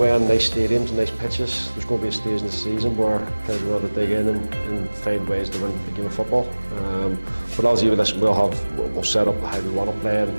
in nice stadiums and nice pitches. There's going to be a stage in the season where players will have to dig in and find ways to win a game of football. But obviously with this, we'll set up how we want to play,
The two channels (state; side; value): inverted; both; correlation -1.00